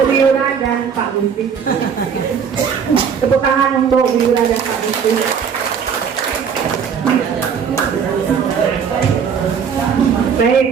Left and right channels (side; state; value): left; quieter; 7.0 dB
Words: Yura dan Pak Gusti. Tepuk tangan untuk Bu Yura dan Pak Gusti. Baik,